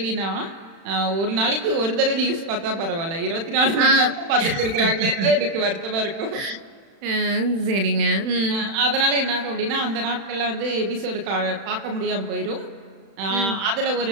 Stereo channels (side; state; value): left; late; 36 ms